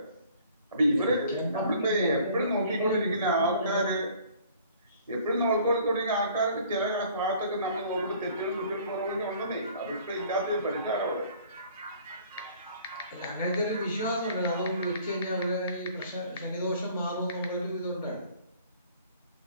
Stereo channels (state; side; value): inverted; both; correlation -0.54